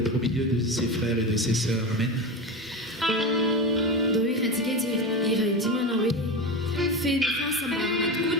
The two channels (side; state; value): both; normal; correlation 0.21